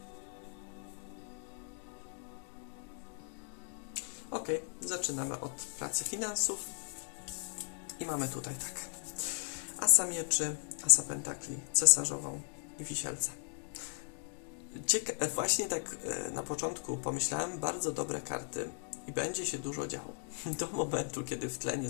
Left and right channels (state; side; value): silent; right; 53 dB below the other